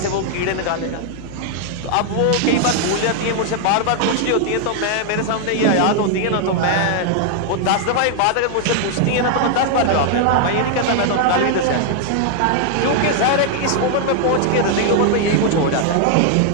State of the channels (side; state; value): both; different; correlation 0.00